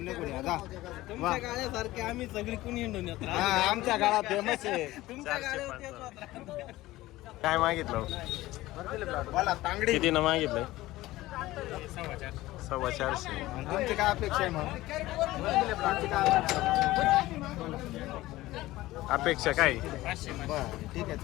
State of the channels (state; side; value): quieter; right; 17.4 dB